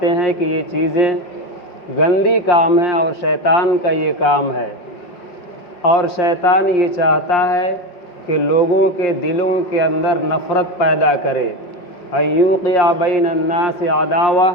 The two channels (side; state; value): right; late; 5.7 ms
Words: ہیں کہ یہ چیزیں گندی کام ہے اور شیطان کا یہ کام ہے، اور شیطان یہ چاہتا ہے کہ لوگوں کے دلوں کے اندر نفرت پیدا کرے۔ ایوقع بین الناس عداوہ،